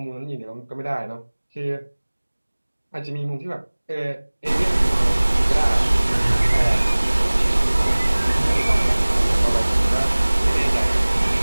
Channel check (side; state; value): both; inverted; correlation -1.00